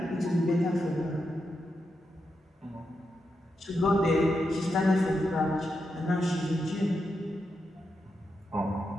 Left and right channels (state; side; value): normal; both; correlation 0.86